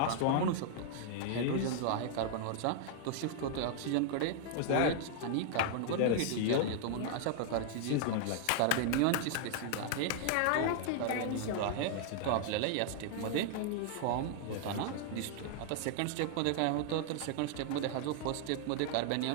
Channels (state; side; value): different; both; correlation 0.00